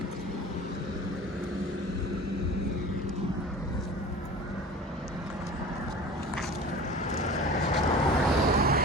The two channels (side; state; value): both; normal; correlation 0.39